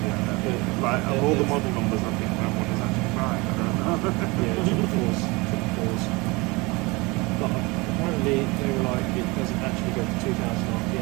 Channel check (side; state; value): left; quieter; 24.8 dB